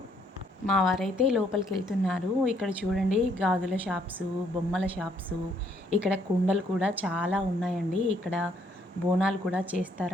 మా వారైతే లోపలికి వెళ్తున్నారు. ఇక్కడ చూడండి గాజుల షాప్స్, బొమ్మల షాప్స్, ఇక్కడ కుండలు కూడా చాలా ఉన్నాయండి. ఇక్కడ బోనాలు కూడా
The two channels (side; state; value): both; normal; correlation 0.68